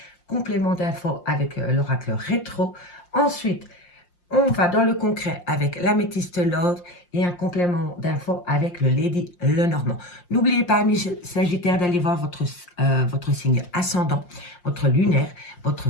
complément d'info avec l'oracle rétro. Ensuite, on va dans le concret avec l'améthyste Love et un complément d'info avec le Lady Lenormand. N'oubliez pas, amis Sagittaires, d'aller voir votre signe ascendant, votre lunaire, votre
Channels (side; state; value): right; late; 5.7 ms